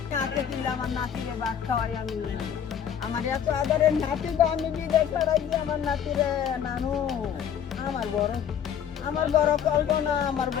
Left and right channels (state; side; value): quieter; right; 8.7 dB